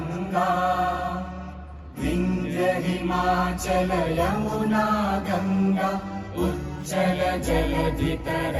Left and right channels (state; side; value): identical; both; correlation 1.00